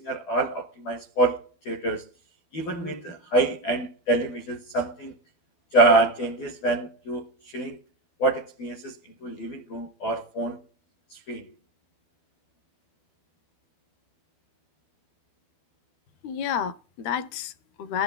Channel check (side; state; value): right; late; 12 ms